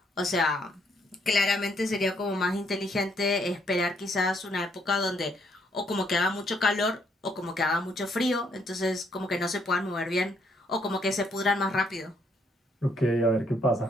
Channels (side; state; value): both; normal; correlation 0.71